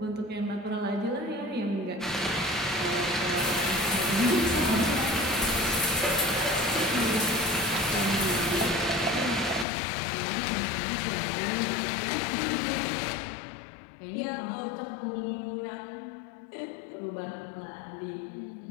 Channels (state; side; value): drops out; right; at 9.7 s